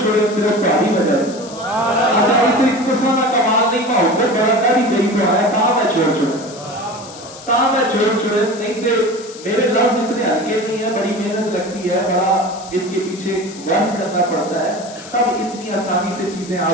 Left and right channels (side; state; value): left; noise; hiss, 17 dB below the sound